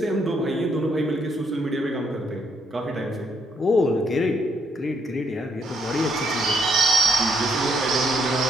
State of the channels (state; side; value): normal; both; correlation 0.71